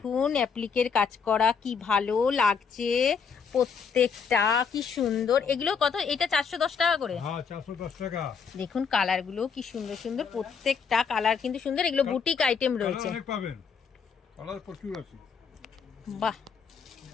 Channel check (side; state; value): right; quieter; 6.0 dB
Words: অ্যাপ্লিকের কাজ করা, কি ভালো লাগছে প্রত্যেকটা, কি সুন্দর। এগুলো কত? এটা 410 টাকা করে। হ্যাঁ, 410 টাকা। দেখুন কালার গুলো কি সুন্দর সুন্দর, প্রত্যেকটা কালার কিন্তু সুন্দর। এগুলো বুটিক আইটেম কালার রয়েছে। অনেক পাবেন, কালার প্রচুর আছে। বাহ,